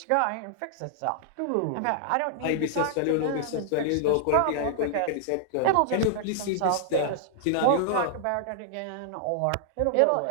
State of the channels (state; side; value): different; both; correlation -0.01